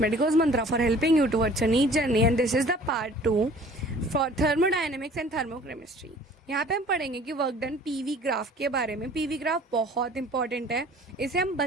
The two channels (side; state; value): both; normal; correlation 0.50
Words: mantra for helping you towards your neat journey, and this is the part 2 for thermodynamics and thermochemistry. यहाँ पे हम पढ़ेंगे कि वर्क डन पीवी ग्राफ के बारे में. पीवी ग्राफ बहुत इंपॉर्टेंट है. इसे हम